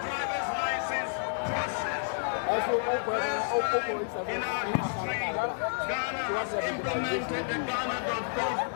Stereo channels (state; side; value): silent; right; 58 dB below the other